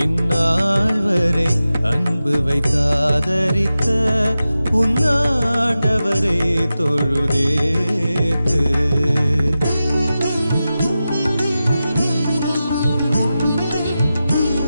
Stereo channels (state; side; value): inverted; both; correlation -0.93